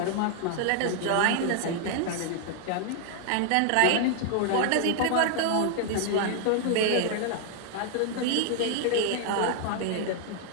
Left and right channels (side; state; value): both; different; correlation 0.00